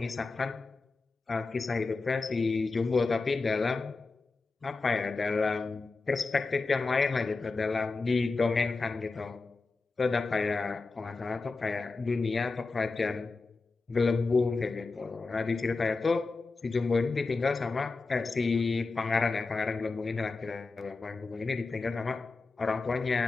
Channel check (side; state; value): right; quieter; 3.9 dB